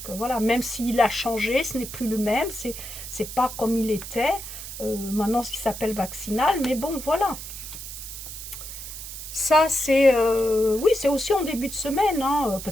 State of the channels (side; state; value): right; noise; hiss, 10 dB below the sound